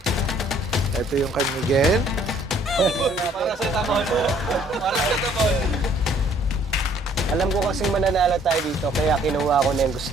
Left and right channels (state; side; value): normal; both; correlation 0.60